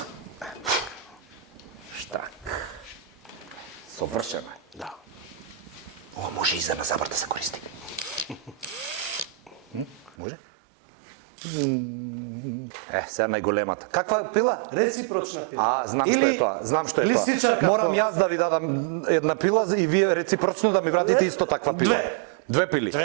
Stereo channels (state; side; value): drops out; left; at 10.2 s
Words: Штак. Совршено е. Да. Ова може и за на забар да се користи. Може? Сега најголемата. Каква пила? Реципрочна пила. Знам што е тоа. Знам што е тоа. Листичарка. Морам јас да ви дадам една пила и вие реципрочно да ми вратите исто таква пила. Две пили.